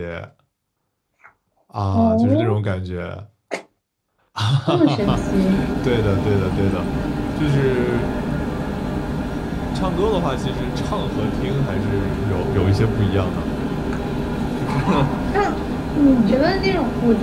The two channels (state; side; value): identical; both; correlation 1.00